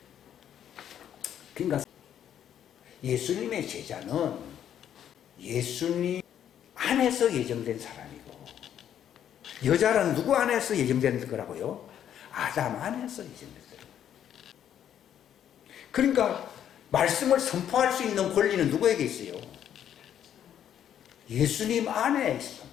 그러니까 예수님의 제자는 예수님 안에서 예정된 사람이고, 여자는 누구 안에서 예정된 거라고요? 아담 안에서 예정된 사람. 그러니까 말씀을 선포할 수 있는 권리는 누구에게 있어요? 예수님 안에 있어.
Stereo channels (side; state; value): right; quieter; 9.9 dB